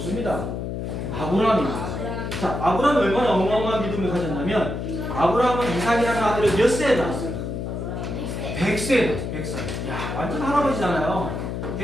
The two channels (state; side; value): noise; left; hum, 4 dB below the sound